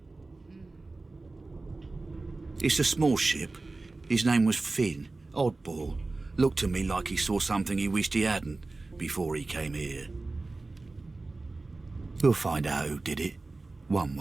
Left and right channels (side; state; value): left; quieter; 3.4 dB